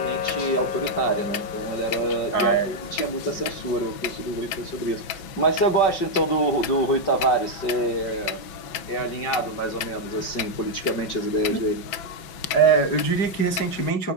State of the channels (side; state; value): right; late; 5.5 ms